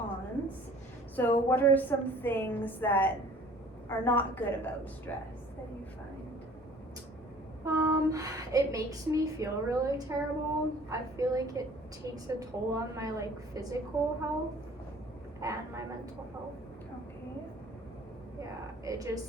So what are some things that are not good about stress that you find? It makes me feel really terrible. I feel like it takes a toll on my like physical health and my mental health. Okay. Yeah, it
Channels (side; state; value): both; normal; correlation 0.51